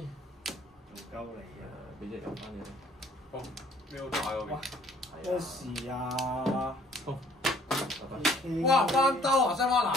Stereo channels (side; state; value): both; normal; correlation 0.58